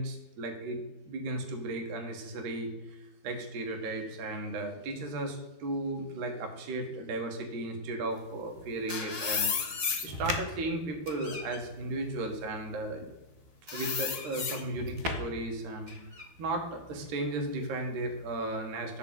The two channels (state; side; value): late; left; 12 ms